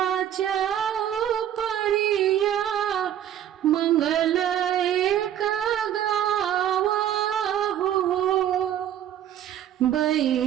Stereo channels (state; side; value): quieter; left; 10.7 dB